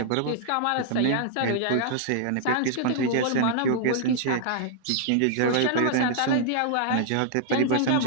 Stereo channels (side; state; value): both; different; correlation -0.01